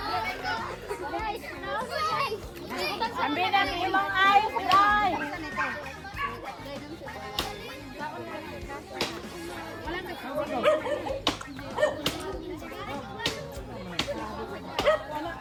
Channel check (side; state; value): both; identical; correlation 1.00